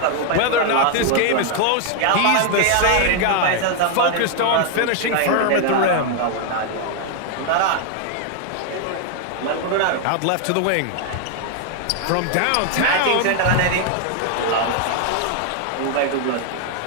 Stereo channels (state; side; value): different; both; correlation 0.01